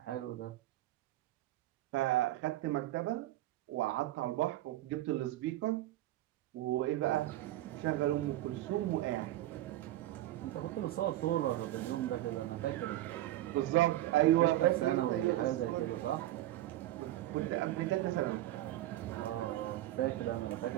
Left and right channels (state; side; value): quieter; left; 15.1 dB